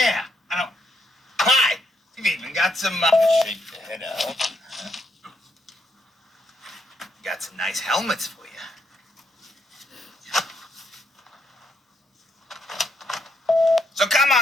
I don't. Hi. You've even got some. Shake the head out. Got some nice helmets for you. So come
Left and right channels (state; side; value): normal; both; correlation 0.76